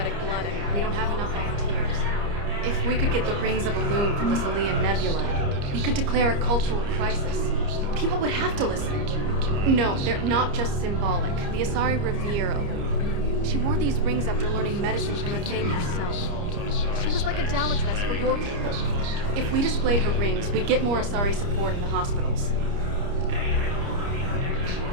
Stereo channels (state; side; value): late; left; 30 ms